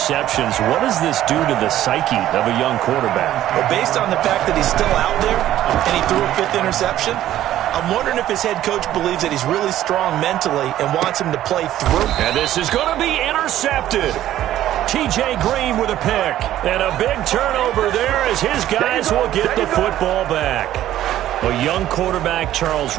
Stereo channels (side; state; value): left; quieter; 12.9 dB